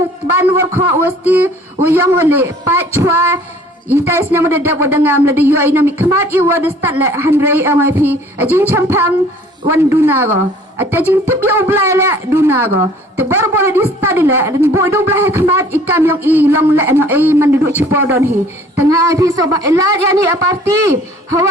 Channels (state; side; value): normal; both; correlation 0.53